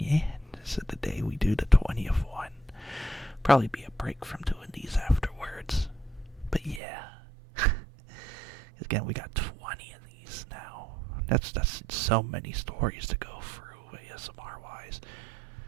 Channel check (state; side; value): drops out; left; at 6.8 s